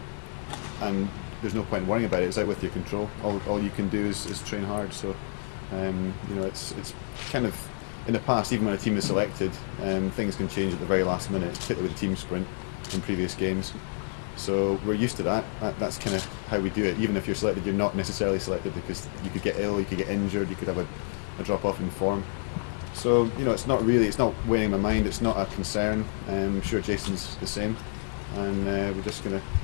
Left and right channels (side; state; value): right; silent; 59 dB below the other